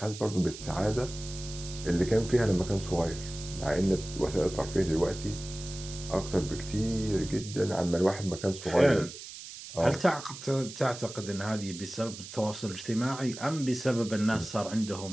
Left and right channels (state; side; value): noise; right; hiss, 12 dB below the sound